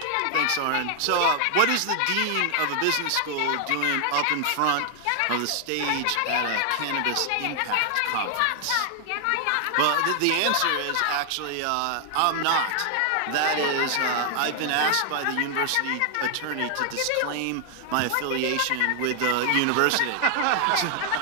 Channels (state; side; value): different; both; correlation 0.00